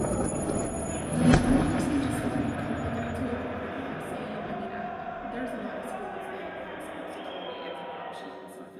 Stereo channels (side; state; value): both; identical; correlation 1.00